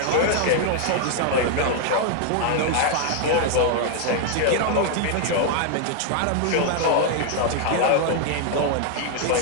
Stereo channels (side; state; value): both; different; correlation 0.00